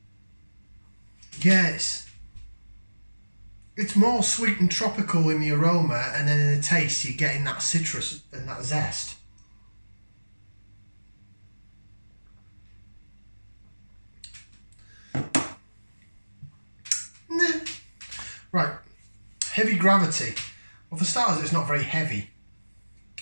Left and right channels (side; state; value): both; inverted; correlation -1.00